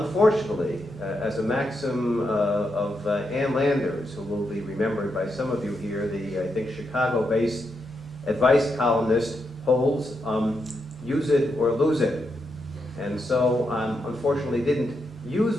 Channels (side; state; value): both; normal; correlation 0.83